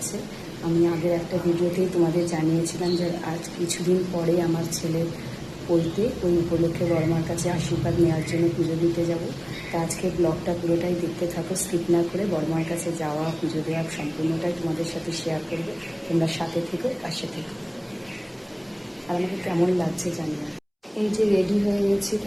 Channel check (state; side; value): identical; both; correlation 1.00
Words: আমি আগের একটা ভিডিওতেই তোমাদের জানিয়েছিলাম যে আজ কিছুদিন পরে আমার ছেলের পৈতে, ওই উপলক্ষে বড়মার কাছে আশীর্বাদ নেওয়ার জন্য পুজো দিতে যাব। তা আজকে ব্লগটা পুরোটাই দেখতে থাকো, স্কিপ না করে। বড়মার কাছে যাওয়া, পুজো দেওয়া সম্পূর্ণটাই তোমাদের সাথে শেয়ার করবে। তোমরা সাথে থেকো, পাশে থেকো। আর আমাকে কেমন লাগছে জানি না। এই যে রেডি হয়ে গেছি,